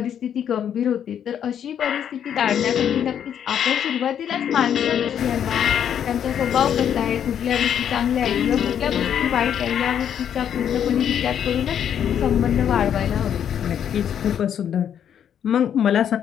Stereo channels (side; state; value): right; quieter; 9.1 dB